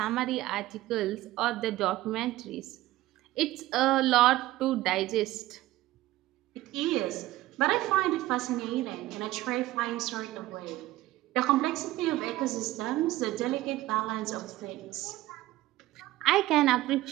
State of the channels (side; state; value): left; quieter; 16.6 dB